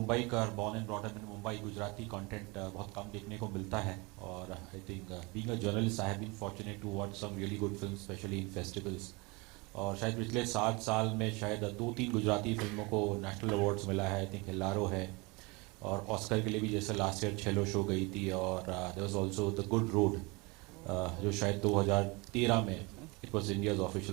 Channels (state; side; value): quieter; left; 26.8 dB